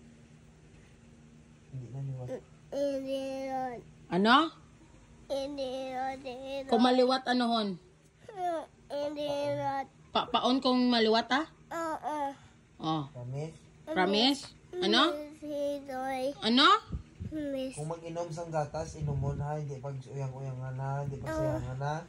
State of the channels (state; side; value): identical; both; correlation 1.00